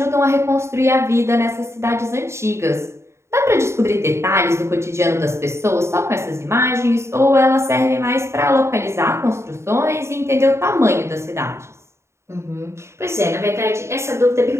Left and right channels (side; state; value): left; late; 0.13 ms